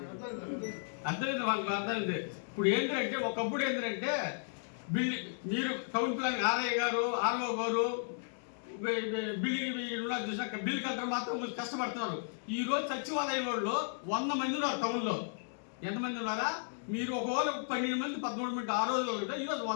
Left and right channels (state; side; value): silent; right; digital silence